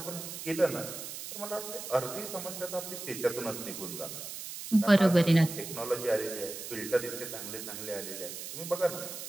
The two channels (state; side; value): noise; right; hiss, 8 dB below the sound